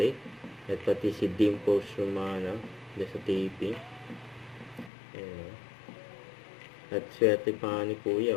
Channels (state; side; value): drops out; right; at 4.9 s